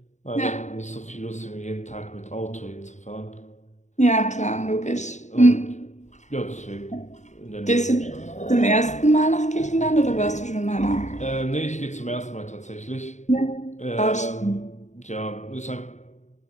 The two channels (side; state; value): right; late; 0.34 ms